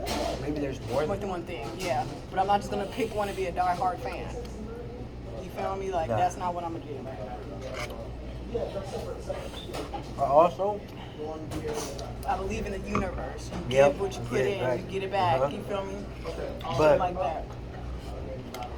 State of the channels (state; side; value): identical; both; correlation 1.00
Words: Maybe there's more More than one thing, yeah. But I'm not just gonna pick one and be a die-hard fan. You feel me? Like, Nah. that's not what I'm gonna do. Also, I believe in the universe. You Yep, give what you you put get it in, back. you get it back. Uh-huh. You feel me? But- Shit like that.